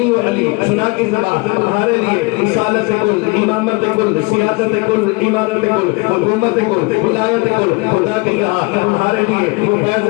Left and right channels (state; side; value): quieter; right; 26.6 dB